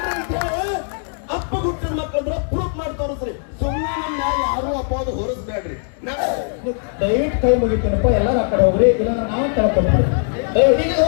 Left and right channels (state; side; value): silent; right; 56 dB below the other